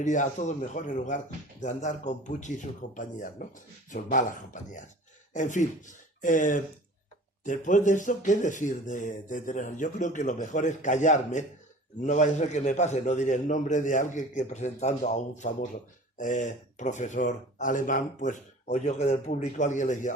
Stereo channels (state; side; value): normal; both; correlation 0.43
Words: a todos mejor en lugar de andar con Pucci y sus compañías, ¿no? Sus malas compañías. En fin, después de esto, ¿qué decir de Teresa? Yo creo que lo mejor es callarme, no vaya a ser que me pase, no diré el nombre de alguien que presentando a un famoso profesor alemán, pues oyó que del público alguien le